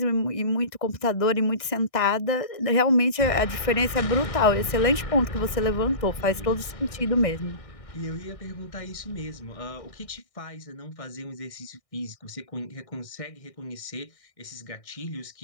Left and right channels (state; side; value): late; right; 1.6 ms